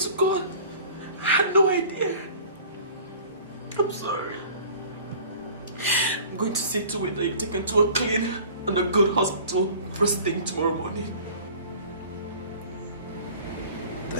God, I had no idea. I'm sorry. I'm going to see to it that you're taken to a clean and a good hospital first thing tomorrow morning.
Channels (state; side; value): inverted; both; correlation -0.45